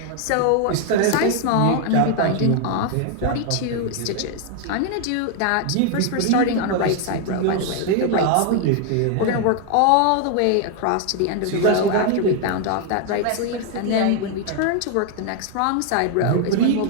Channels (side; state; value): both; different; correlation 0.00